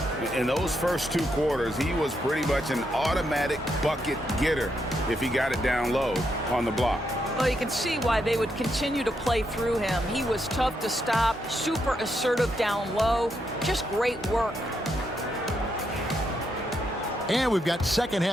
In those first 2 quarters, he was pretty much an automatic bucket getter if he got it down low on the block. Well, you can see why they would continue to play through him. He was tough to stop, super assertive down low, just great work. And we've got second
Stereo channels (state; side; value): normal; both; correlation 0.80